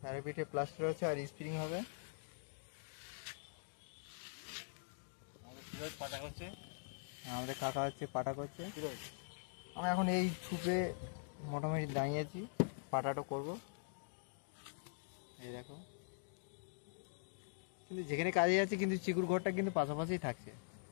প্যারাপিটে প্লাস্টার হচ্ছে আর স্প্রিং হবে। পাটা করছে, আমাদের কাকা হচ্ছে পাটা করছে। আমরা এখন এই ছুপে মোটামুটি দাঁড়িয়েছি, পাটাটা করব। এই দেখো, কিন্তু যেখানে কাজে যাচ্ছে কিন্তু চিকুর ঘরটা কিন্তু পাশাপাশি থাকছে।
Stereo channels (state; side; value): silent; right; digital silence